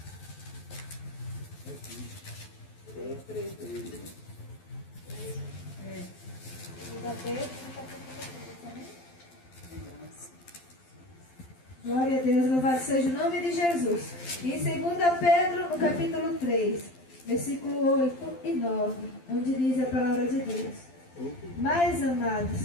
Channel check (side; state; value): right; late; 12 ms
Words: 2 Pedro, no capítulo 3. Glória a Deus, louvado seja o nome de Jesus. E em 2 Pedro, no capítulo 3, versículo 8 e 9, onde diz a palavra de Deus: Mas, amados,